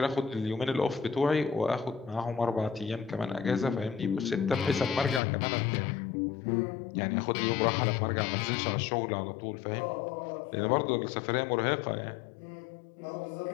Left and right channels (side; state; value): right; drops out; at 5.2 s